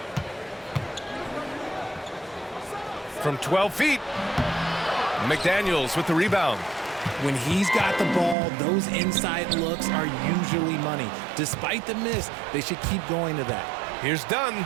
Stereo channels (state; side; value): drops out; left; at 8.3 s